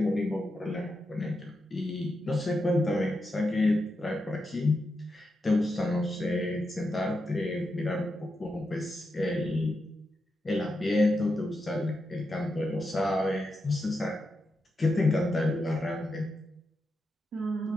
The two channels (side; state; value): both; normal; correlation 0.86